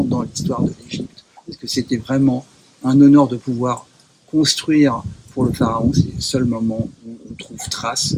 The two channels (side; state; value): both; identical; correlation 1.00